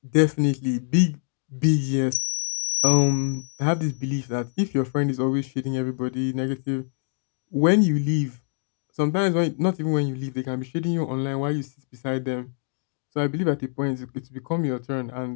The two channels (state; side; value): silent; right; digital silence